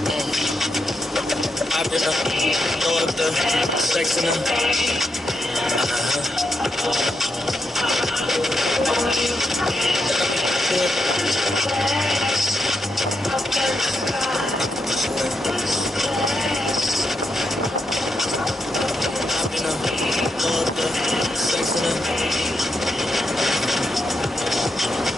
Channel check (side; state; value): both; normal; correlation 0.83